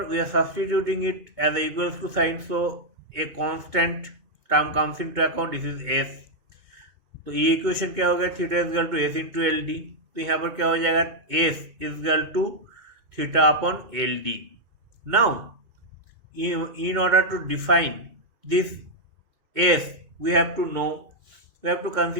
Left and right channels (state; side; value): late; left; 2.2 ms